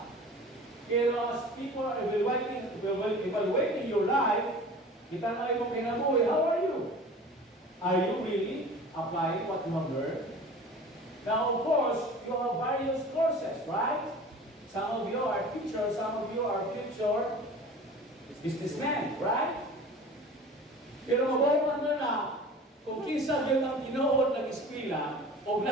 pero as people are evaluating your life, kita na yung kinabuhi, how are you? Are you really applying what you have learned? Now, of course, you have various courses, right? Some of you are teachers, some of you are future businessmen, right? Pero mabawaman mo na kung kinsa yun ang tinuod ng eskwela o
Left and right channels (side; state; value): both; normal; correlation 0.40